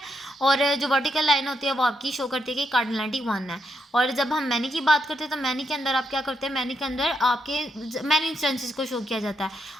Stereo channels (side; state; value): both; normal; correlation 0.80